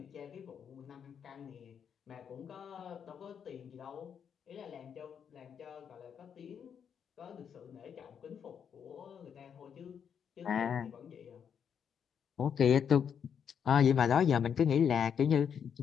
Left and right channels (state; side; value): quieter; right; 7.7 dB